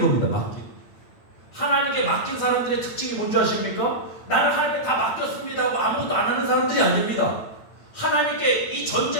겁니다. 맡기는. 하나님께 맡긴 사람들의 특징이 뭔지 아십니까? 나는 하나님께 다 맡겼습니다 하고 아무것도 안 하는 사람들이 아닙니다. 하나님께 이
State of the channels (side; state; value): right; late; 8.8 ms